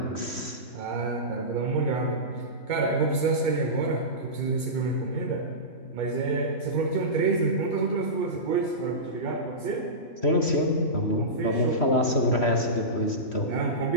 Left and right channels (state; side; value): late; right; 3.1 ms